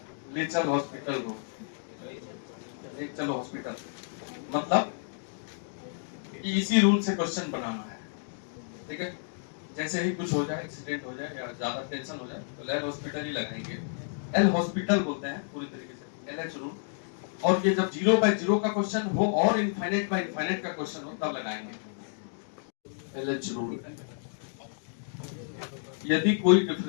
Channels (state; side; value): silent; right; digital silence